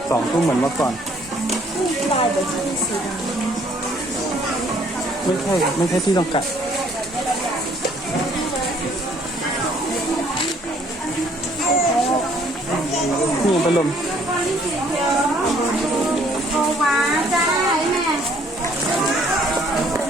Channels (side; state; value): both; normal; correlation 0.61